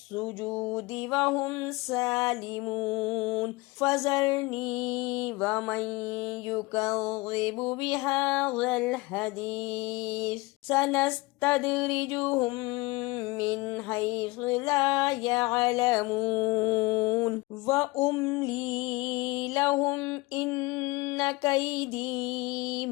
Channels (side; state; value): right; quieter; 23.0 dB